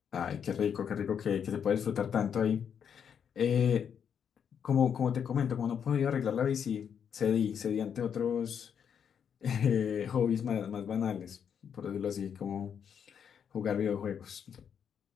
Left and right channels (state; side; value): quieter; right; 7.8 dB